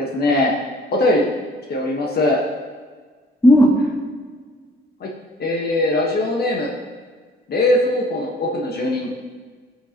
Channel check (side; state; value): both; normal; correlation 0.54